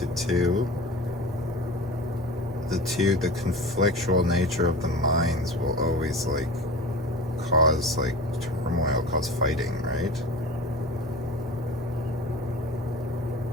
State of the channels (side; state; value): both; normal; correlation 0.35